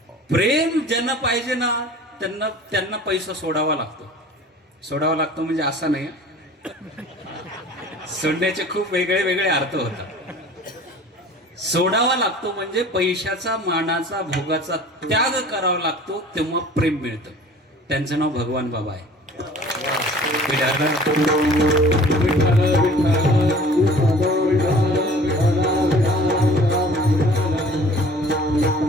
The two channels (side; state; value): both; normal; correlation 0.46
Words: प्रेम ज्यांना पाहिजे ना त्यांना पैसा सोडावा लागतो. सोडावा लागतो म्हणजे असा नाही, सोडण्याचे खूप वेगळे वेगळे अर्थ होतात. सोडावा लागतो म्हणजे पैशाचा, मानाचा, भोगाचा त्याग करावा लागतो, तेव्हा प्रेम मिळतं. त्यांचं नाव भगवान बाबा आहे.